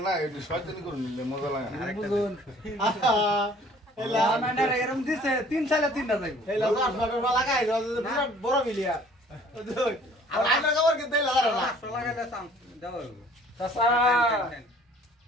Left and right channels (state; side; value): normal; both; correlation 0.54